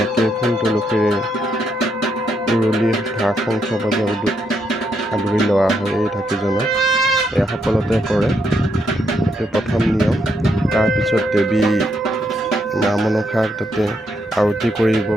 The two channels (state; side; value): normal; both; correlation 0.77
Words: ফুল তুলসীৰে উৰুলি ঢাক শংখ বজাই আদৰি লোৱা হয় এই ঢাকিজনক। এয়া সকলোতে কৰে, এইটো প্ৰথম নিয়ম। তাৰপিছত দেৱী মা মনসাক তাতে আৰতি কৰিব।